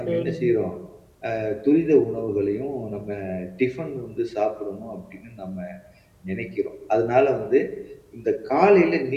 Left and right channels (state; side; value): identical; both; correlation 1.00